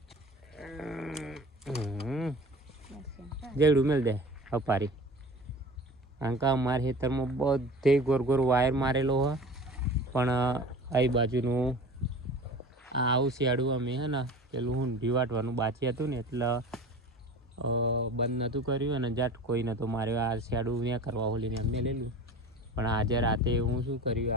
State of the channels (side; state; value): both; normal; correlation 0.39